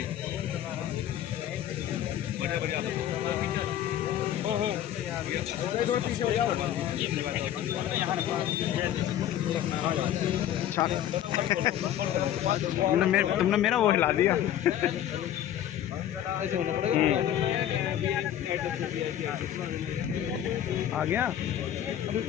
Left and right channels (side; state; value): right; quieter; 11.3 dB